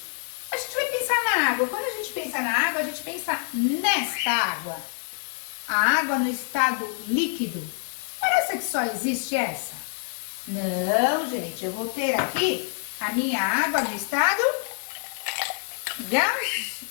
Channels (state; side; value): silent; right; 61 dB below the other